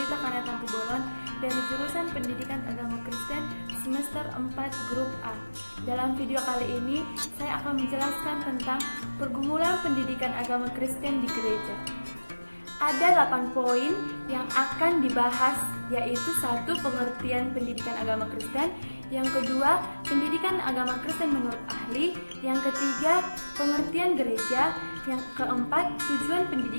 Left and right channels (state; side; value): inverted; both; correlation -1.00